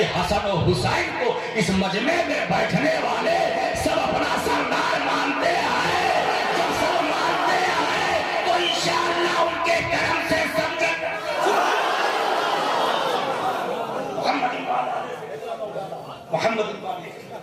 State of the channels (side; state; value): both; identical; correlation 1.00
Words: حسن و حسین کو اس مجمع میں بیٹھنے والے سب اپنا سردار مانتے ہیں۔ جب سب مانتے ہیں تو انشاءاللہ ان کے کرم سے سمجھے محمد